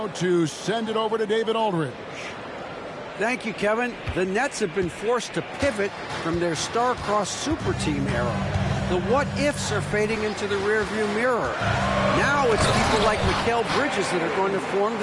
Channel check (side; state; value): both; identical; correlation 1.00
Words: to send it over to David Aldridge. Thank you, Kevin. The Nets have been forced to pivot from their star-crossed super team era. The what-ifs are fading into the rearview mirror. Now it's people like Mikal Bridges that are going to form